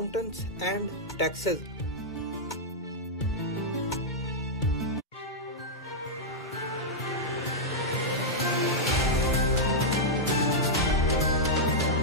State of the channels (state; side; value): normal; both; correlation -0.07